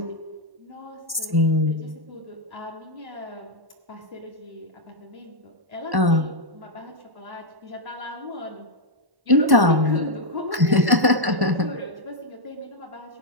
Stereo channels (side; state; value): left; late; 1.1 ms